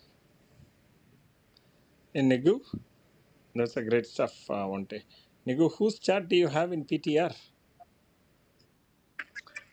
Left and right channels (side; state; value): both; identical; correlation 1.00